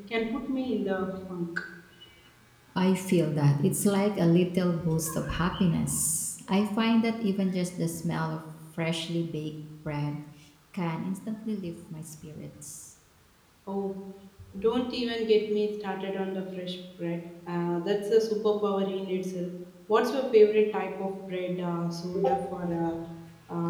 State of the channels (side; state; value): both; identical; correlation 1.00